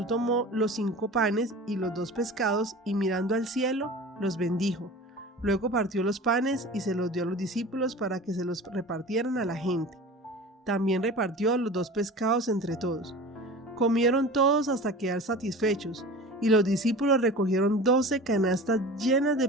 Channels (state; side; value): normal; both; correlation 0.37